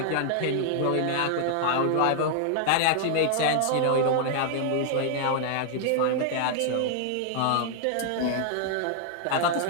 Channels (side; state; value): both; different; correlation 0.00